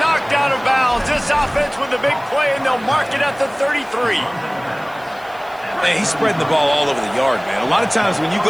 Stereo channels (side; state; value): right; noise; hiss, 27 dB below the sound